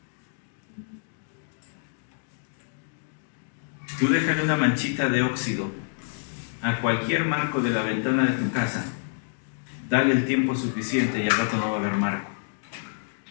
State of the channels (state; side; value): silent; right; digital silence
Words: Tú déjale una manchita de óxido a cualquier marco de la ventana de tu casa, dale el tiempo suficiente y al rato no va a haber marco.